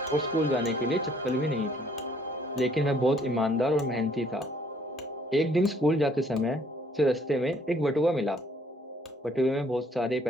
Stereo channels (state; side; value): normal; both; correlation 0.63